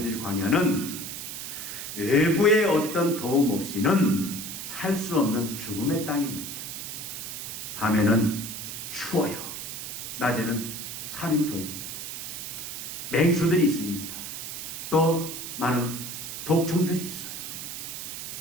광야는 외부의 어떤 도움 없이는 살 수 없는 죽음의 땅입니다. 밤에는 추워요. 낮에는 살인토입니다. 맹수들이 있습니다. 또 많은 독충들이 있어요.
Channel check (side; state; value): right; noise; hiss, 7 dB below the sound